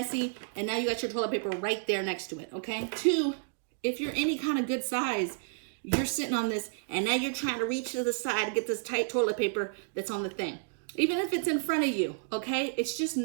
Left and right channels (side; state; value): left; silent; digital silence